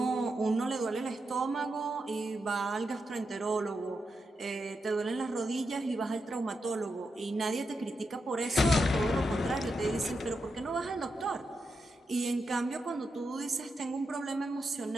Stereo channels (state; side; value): normal; both; correlation 0.86